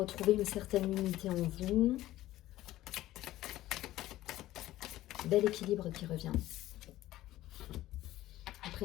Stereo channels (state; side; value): quieter; right; 15.3 dB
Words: une certaine unité en vous. Bel équilibre qui revient. Après